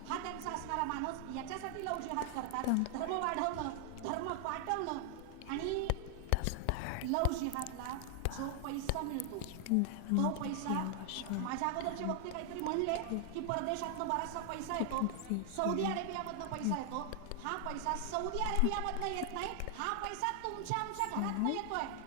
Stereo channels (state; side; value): different; both; correlation 0.00